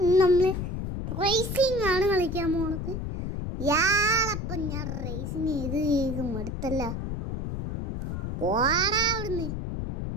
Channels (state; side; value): noise; left; rumble, 4 dB below the sound